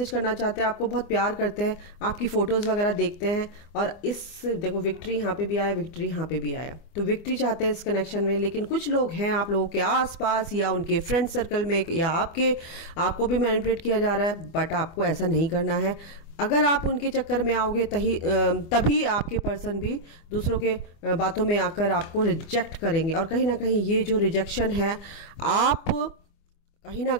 करना चाहते हैं, आपको बहुत प्यार करते हैं, आपकी फ़ोटोज़ वगैरह देखते हैं। और इस देखो विक्ट्री यहाँ पे भी आया, विक्ट्री यहाँ पे भी आया, तो विक्ट्री चाहते हैं इस कनेक्शन में। लेकिन कुछ लोग हैं आप लोगों के आसपास या उनके फ्रेंड सर्कल में या आपको भी मैनिपुलेट किया जा रहा है, बट आपको ऐसा नहीं करना है। अगर आप उनके चक्कर में आओगे तभी आपके पर्सन भी दूसरों के बातों में आकर आपको रिजेक्ट करेंगे। और कहीं ना कहीं ये जो रिजेक्शन है, आप कहीं ना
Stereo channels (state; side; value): late; right; 25 ms